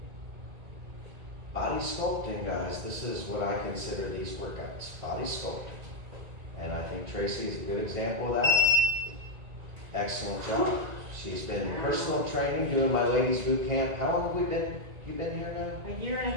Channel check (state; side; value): late; left; 1.9 ms